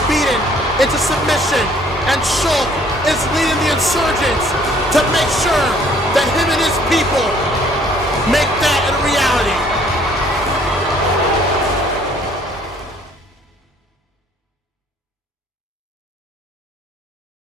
beaten into submission and Shulk is leading the insurgents to make sure that him and his people make that a reality.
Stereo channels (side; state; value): both; normal; correlation 0.59